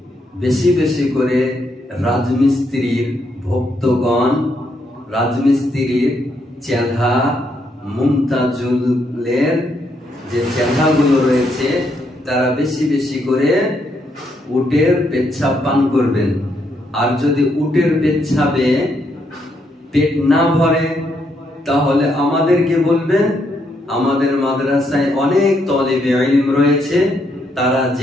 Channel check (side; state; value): both; normal; correlation 0.76